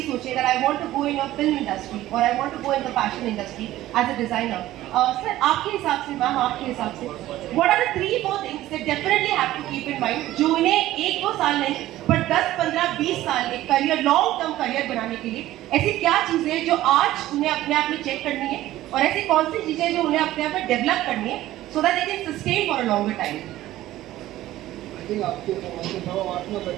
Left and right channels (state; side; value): quieter; left; 15.0 dB